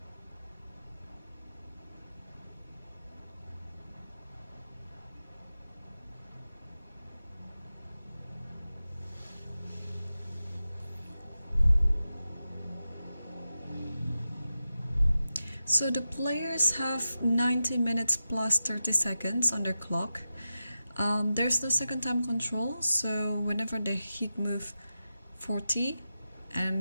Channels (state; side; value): inverted; both; correlation -0.92